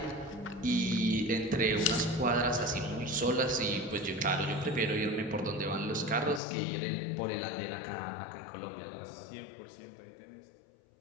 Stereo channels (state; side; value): drops out; right; at 6.4 s